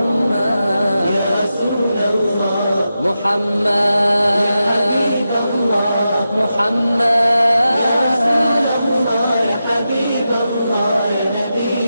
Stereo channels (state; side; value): inverted; both; correlation -0.90